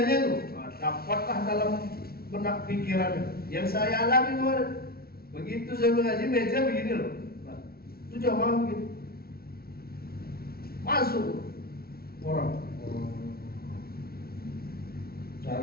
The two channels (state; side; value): late; right; 0.44 ms